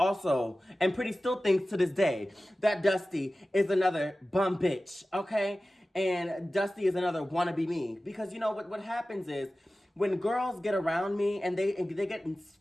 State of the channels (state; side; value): normal; both; correlation 0.96